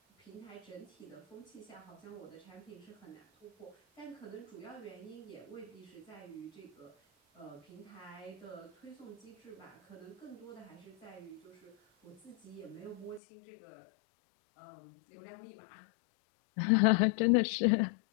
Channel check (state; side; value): drops out; right; at 13.2 s